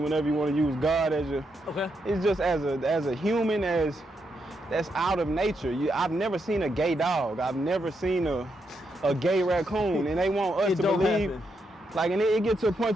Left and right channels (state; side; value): normal; both; correlation 0.81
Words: you want to use God as your, it's just as a human, that's out of nature. I've never seen a gay dog. I've never seen a gay raccoon, and they want us to believe. Happen. Like, and it gets to a